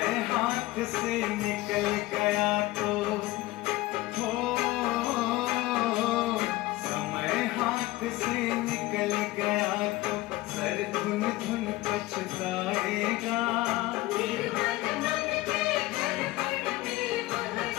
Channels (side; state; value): right; quieter; 18.6 dB